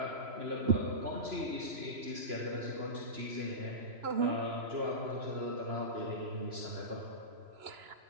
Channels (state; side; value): late; left; 3.0 ms